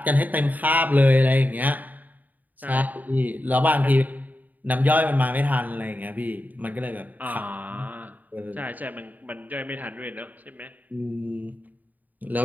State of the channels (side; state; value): left; late; 0.082 ms